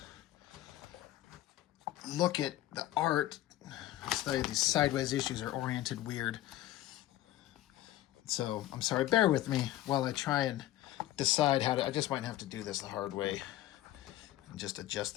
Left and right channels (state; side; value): quieter; right; 14.6 dB